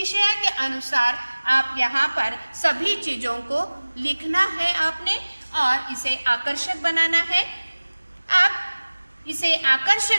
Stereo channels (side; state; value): both; inverted; correlation -1.00